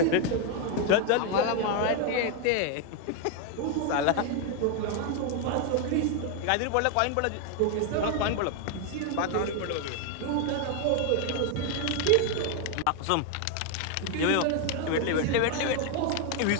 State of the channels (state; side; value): different; both; correlation 0.00